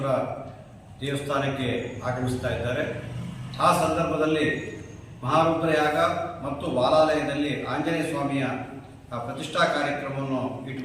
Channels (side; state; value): both; identical; correlation 1.00